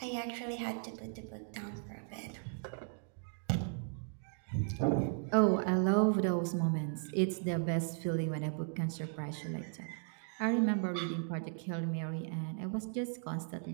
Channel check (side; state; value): left; silent; 54 dB below the other